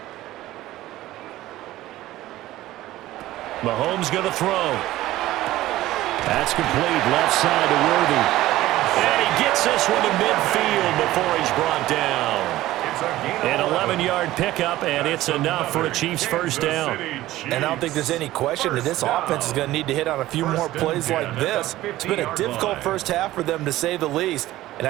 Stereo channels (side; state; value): left; quieter; 15.8 dB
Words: Mahomes going to throw. That's complete. Left side to Worthy. And he gets this one to midfield before he's brought down. An 11-yard pickup, and it's enough for a Chiefs first down. And I don't think there's any question that this offense is going to need to hit on a few more plays like this. It's been a difficult first half for them, to say the least. And